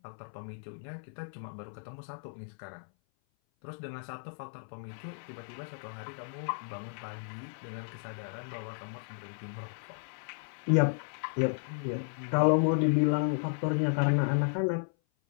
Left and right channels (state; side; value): silent; right; 55 dB below the other